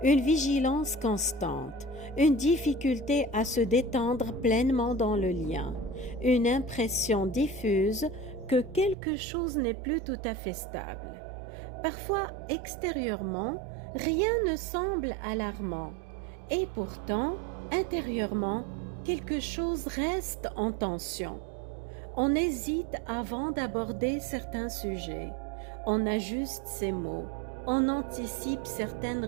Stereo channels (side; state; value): left; drops out; at 9.0 s